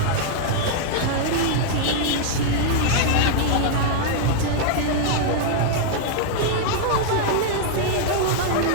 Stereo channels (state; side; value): different; both; correlation -0.01